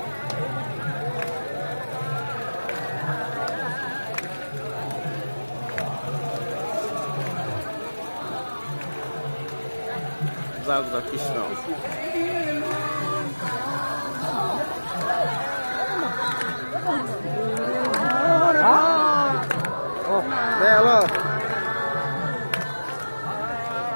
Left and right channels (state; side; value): inverted; both; correlation -1.00